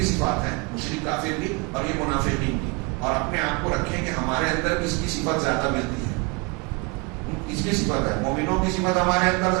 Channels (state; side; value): quieter; left; 29.7 dB